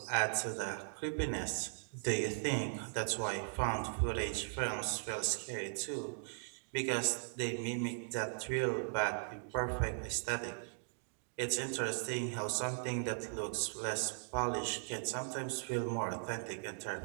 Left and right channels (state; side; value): silent; left; digital silence